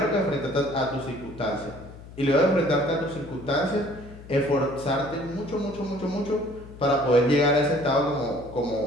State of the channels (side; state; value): left; noise; hum, 17 dB below the sound